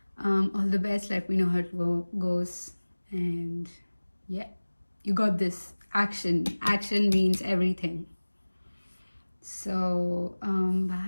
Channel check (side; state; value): both; inverted; correlation -1.00